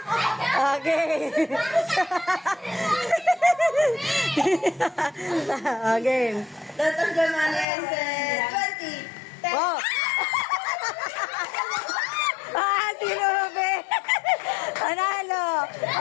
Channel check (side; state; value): right; drops out; at 7.7 s